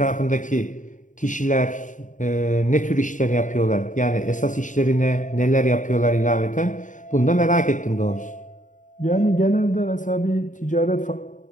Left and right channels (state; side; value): late; right; 0.37 ms